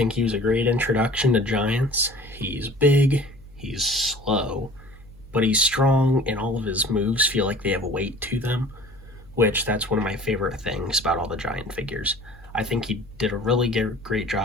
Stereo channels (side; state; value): left; noise; hum, 23 dB below the sound